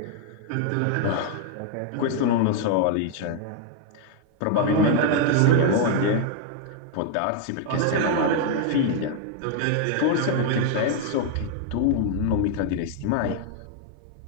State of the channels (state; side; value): different; both; correlation 0.00